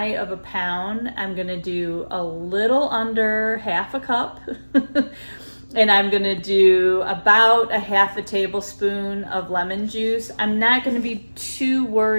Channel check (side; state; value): both; inverted; correlation -1.00